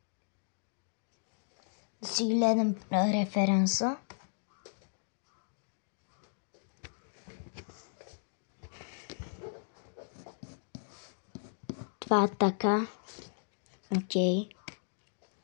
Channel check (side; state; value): right; silent; digital silence